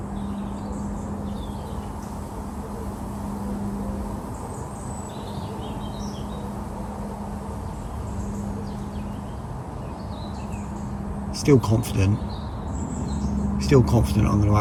Still confident I'm going to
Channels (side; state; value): both; identical; correlation 1.00